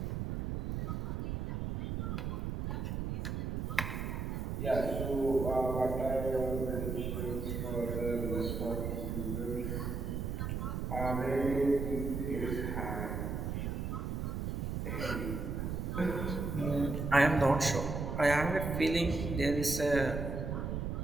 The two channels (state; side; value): noise; right; rumble, 2 dB below the sound